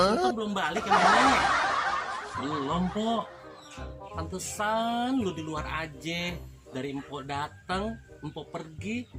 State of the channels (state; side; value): identical; both; correlation 1.00